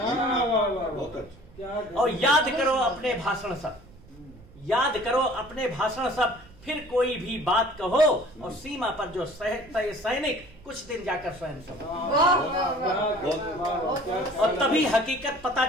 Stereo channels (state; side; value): noise; right; rumble, 23 dB below the sound